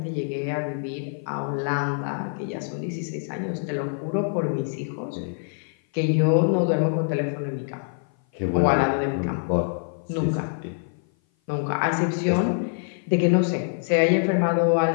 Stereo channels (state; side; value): silent; right; 56 dB below the other